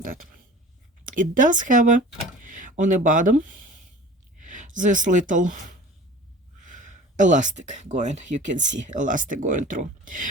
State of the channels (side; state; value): both; normal; correlation 0.42